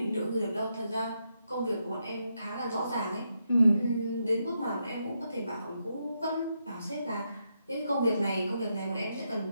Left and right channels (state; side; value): inverted; both; correlation -0.82